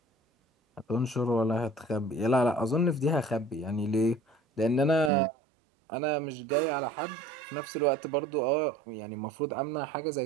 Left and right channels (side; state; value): left; drops out; at 5.1 s